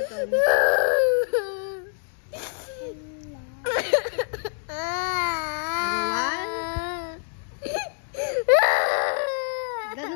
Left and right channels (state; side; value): silent; right; 56 dB below the other